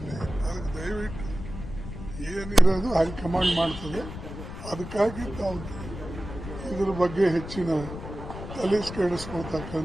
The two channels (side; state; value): left; noise; rumble, 10 dB below the sound